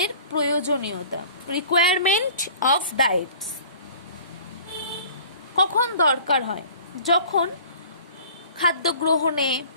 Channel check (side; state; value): both; inverted; correlation -0.47